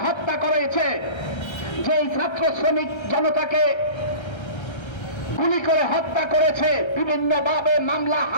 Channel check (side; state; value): right; late; 1.3 ms